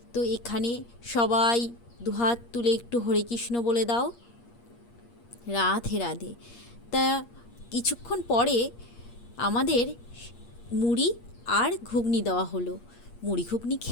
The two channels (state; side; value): late; right; 8.5 ms